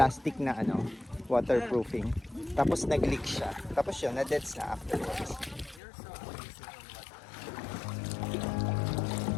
na waterproofing. Tapos nag-leak siya. Tapos yun, na-deads na afterwards.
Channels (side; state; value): right; drops out; at 5.8 s